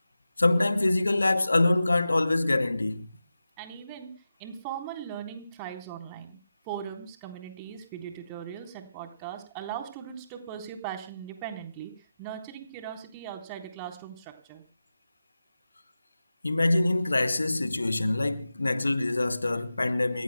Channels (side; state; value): both; inverted; correlation -0.93